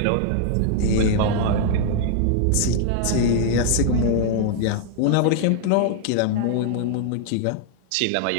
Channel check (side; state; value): both; different; correlation -0.01